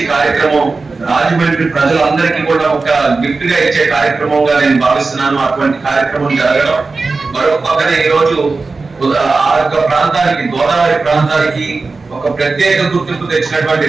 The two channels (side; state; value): left; quieter; 3.9 dB